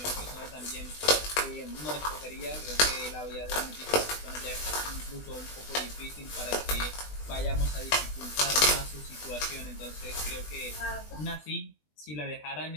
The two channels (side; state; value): right; late; 20 ms